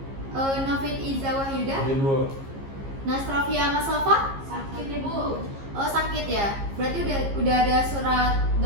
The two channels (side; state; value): left; late; 15 ms